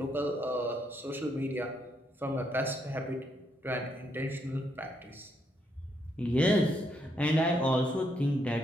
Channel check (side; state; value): both; normal; correlation 0.76